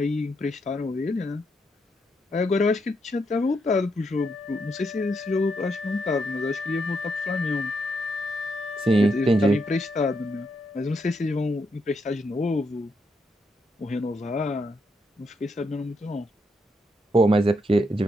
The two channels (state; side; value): normal; both; correlation 0.79